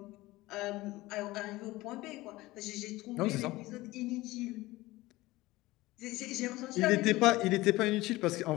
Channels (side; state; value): right; quieter; 19.1 dB